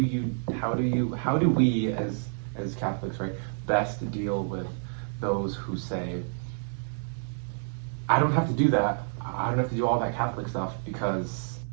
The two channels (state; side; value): silent; left; digital silence